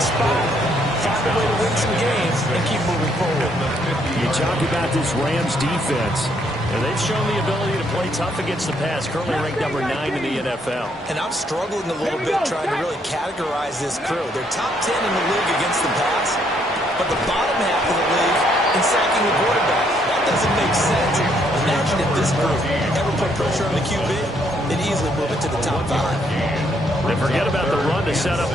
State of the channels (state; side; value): normal; both; correlation 0.71